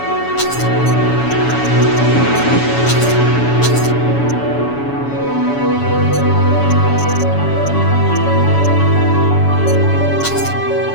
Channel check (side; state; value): right; late; 7.1 ms